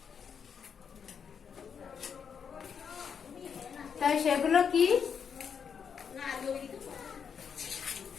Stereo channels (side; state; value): right; quieter; 7.0 dB